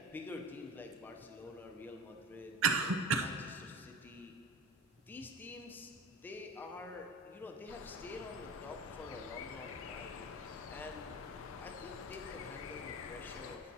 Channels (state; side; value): normal; both; correlation 0.33